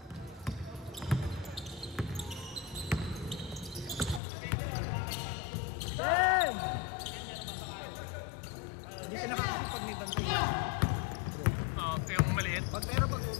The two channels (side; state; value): right; drops out; at 4.2 s